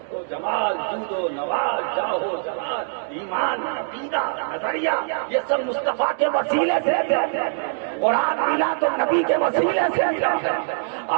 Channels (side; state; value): left; silent; 63 dB below the other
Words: و جمال، جود و نواز، جاہ و جلال، ایمان، عقیدہ، نظریہ، یہ سب مصطفیٰ کے وسیلے سے. قرآن ملا تو نبی کے وسیلے سے ملا،